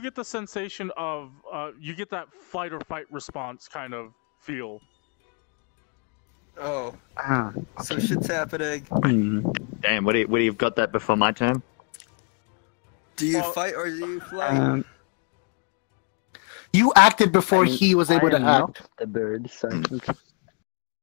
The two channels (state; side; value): quieter; right; 33.0 dB